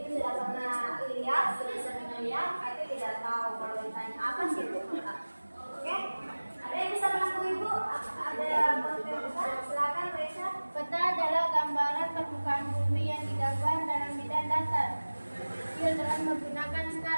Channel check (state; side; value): inverted; both; correlation -1.00